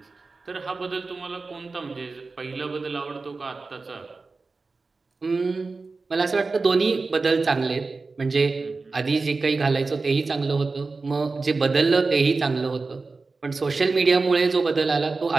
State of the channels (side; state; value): left; quieter; 3.9 dB